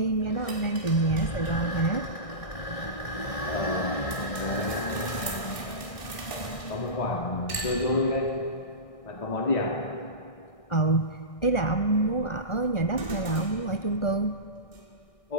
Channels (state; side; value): late; right; 1.6 ms